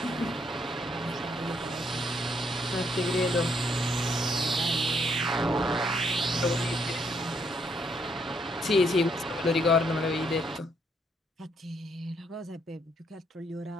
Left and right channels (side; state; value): both; normal; correlation 0.72